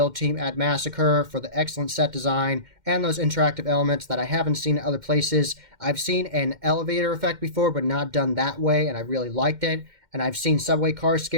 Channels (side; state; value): left; late; 2.1 ms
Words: team at Massacre for the excellent set design and those interactive elements that I haven't seen in other places. I've seen an elevator effect before, but not done that way, and I really liked it. And I've seen subway car